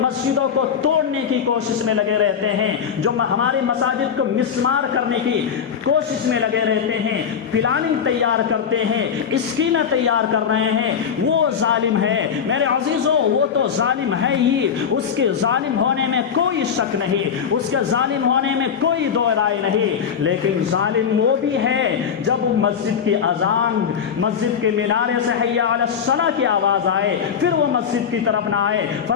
مسجدوں کو توڑنے کی کوشش میں لگے رہتے ہیں، جو ہماری مساجد کو مسمار کرنے کی کوشش میں لگے رہتے ہیں، پلاننگ تیار کرتے ہیں، اسکیمیں تیار کر رہے ہیں، وہ ظالم ہے۔ میرے عزیزوں وہ تو ظالم ہے ہی، اس کے ظالم ہونے میں کوئی شک نہیں، اس کے ظالم ہونے میں کوئی دو رائے نہیں، لیکن ظالم وہ بھی ہے جب مسجد کی اذان، مسجد کے مینارے سے حیا علی الصلاۃ کی آواز آئے پھر وہ مسجد کی طرف نہ آئے۔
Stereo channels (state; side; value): quieter; right; 7.4 dB